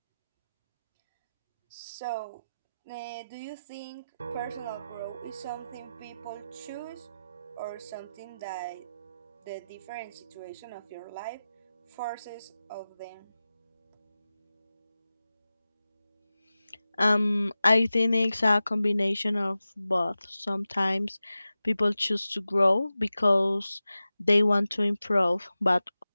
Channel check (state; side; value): inverted; both; correlation -0.95